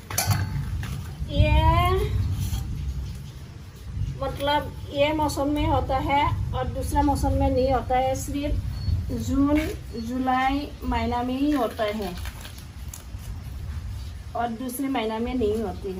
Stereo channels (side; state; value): both; identical; correlation 1.00